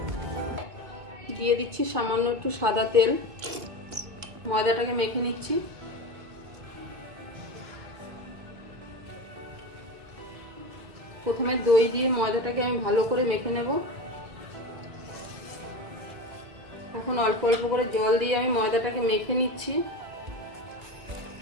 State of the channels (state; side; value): late; left; 1.9 ms